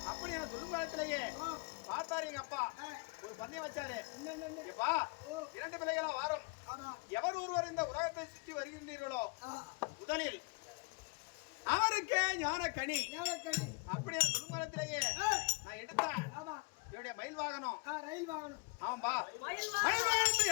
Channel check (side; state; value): right; quieter; 29.4 dB